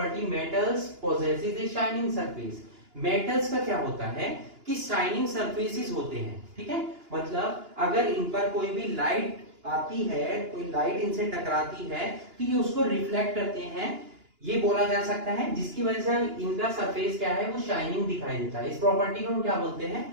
metals possesses a shining surface. Metals का क्या होता है कि शाइनिंग सरफेसेस होते हैं। ठीक है, मतलब अगर इन पर कोई भी लाइट आती है, कोई लाइट इनसे टकराती है, तो ये उसको रिफ्लेक्ट करते हैं, ये बोला जा सकता है, जिसकी वजह से इनका सरफेस क्या है? वो शाइनिंग दिखाई देता है। इस प्रॉपर्टी को हम क्या बोलते हैं?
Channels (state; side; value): late; left; 2.9 ms